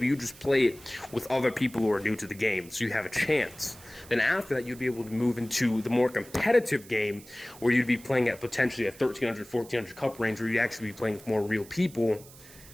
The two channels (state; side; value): noise; right; hiss, 20 dB below the sound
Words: you just play it with other people who are new to the game, so you have a chance. Then after that, you'd be able to move into the more competitive game where you'd be playing at potentially a 1300, 1400 cup range where you'd actually be playing with more real people